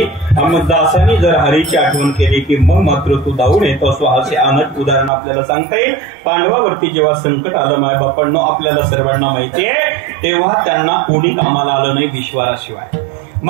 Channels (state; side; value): drops out; left; at 5.1 s